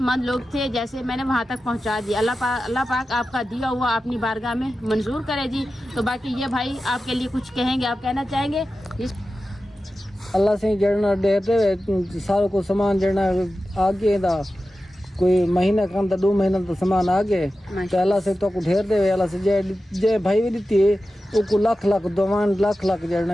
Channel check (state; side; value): normal; both; correlation 0.93